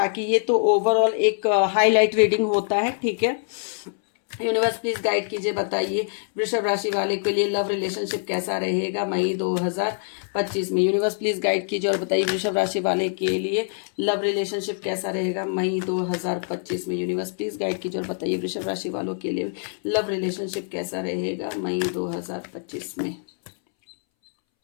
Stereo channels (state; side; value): silent; right; 62 dB below the other